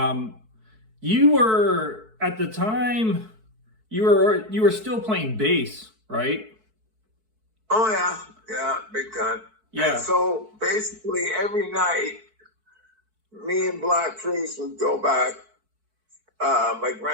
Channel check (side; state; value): left; late; 4.6 ms